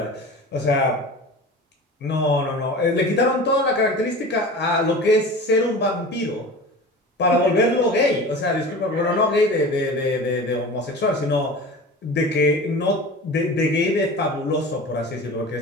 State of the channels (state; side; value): normal; both; correlation 0.35